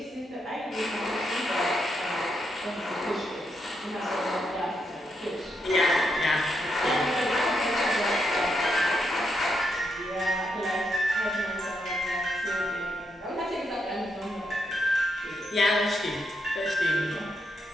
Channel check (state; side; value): normal; both; correlation 0.81